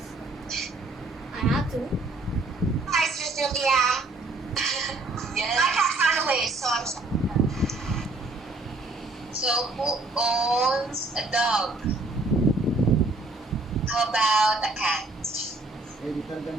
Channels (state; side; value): quieter; left; 3.1 dB